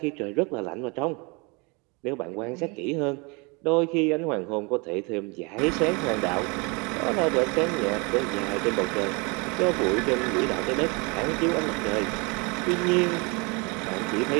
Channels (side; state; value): left; quieter; 29.4 dB